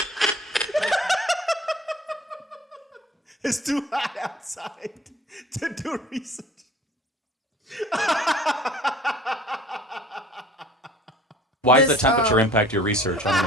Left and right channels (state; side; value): normal; both; correlation 0.49